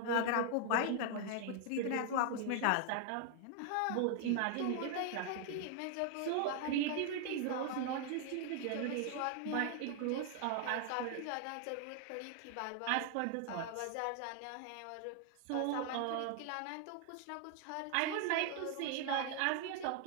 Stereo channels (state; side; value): different; both; correlation 0.00